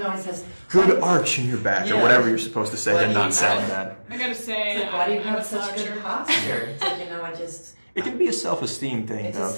always says Good arch in your back, or Yeah. whatever you're supposed to say, Why and do not you sound have- bad. I gotta say, It's like, why do you I'm have a such sloucher. good posture? It's like, I just. It can be a self-esteem thing, It's though, a for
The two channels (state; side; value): inverted; both; correlation -1.00